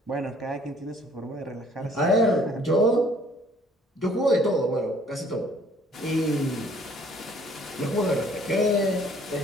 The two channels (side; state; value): both; normal; correlation 0.58